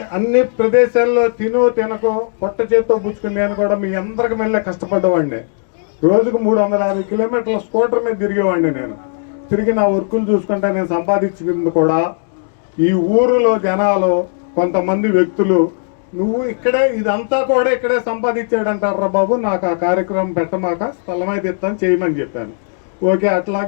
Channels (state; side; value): silent; right; digital silence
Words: అన్ని ప్రదేశాల్లో తినకో పొట్ట చేత్తో పుచ్చుకుని నేను కూడా మీ అందరికి మళ్ళీ కష్టపడ్డవాడిని. రోజుకు 350 కిలోమీటర్ల స్కూటర్ మీద తిరిగేవాడిని. నేను తిరిగి నా వర్కులు చూసుకుంటే నేను సంపాదించింది కూడా ఈ ఊరిలో జనాలు కొంతమంది వ్యక్తులు, నువ్వు ఇక్కడే ఇదంతా కూడా ఇక్కడే సంపాదించాడంటారా బాబు, నాకు ఆ కార్యక్రమం పెట్టమాక స్థలమైతే ఇస్తాను చేయమని చెప్పాను. ఓకే,